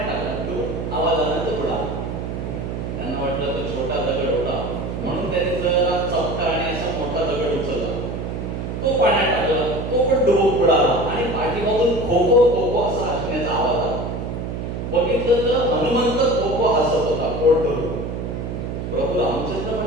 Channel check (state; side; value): noise; right; hum, 5 dB below the sound